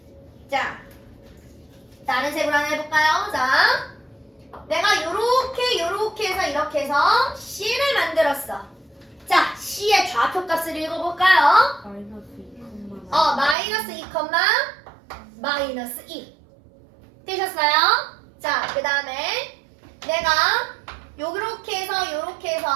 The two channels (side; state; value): left; drops out; at 13.6 s